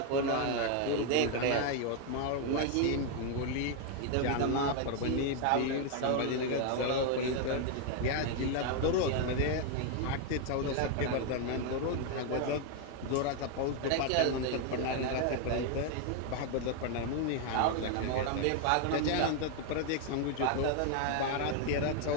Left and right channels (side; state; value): both; different; correlation 0.00